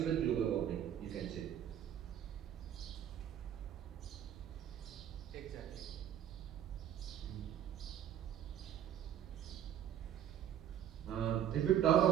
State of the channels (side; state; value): left; quieter; 10.4 dB